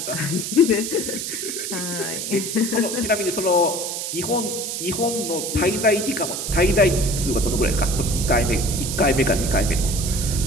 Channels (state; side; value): noise; right; hiss, 4 dB below the sound